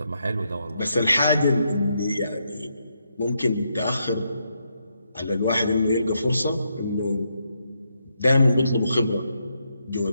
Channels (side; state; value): both; inverted; correlation -0.80